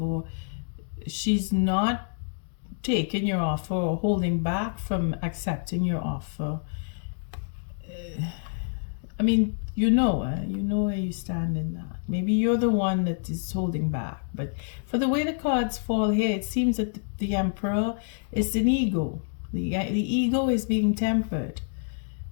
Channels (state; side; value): silent; right; digital silence